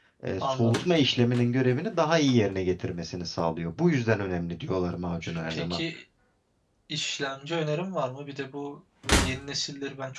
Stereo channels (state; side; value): identical; both; correlation 1.00